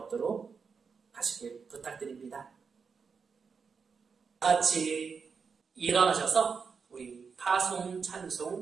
하시길 부탁드립니다. 같이 일어나셔서 우리 파송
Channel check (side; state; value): left; quieter; 5.6 dB